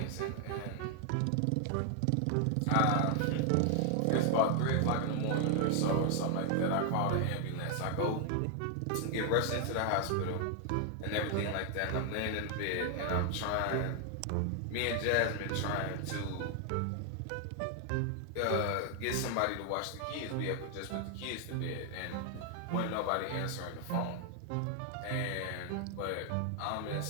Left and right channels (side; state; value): both; different; correlation 0.00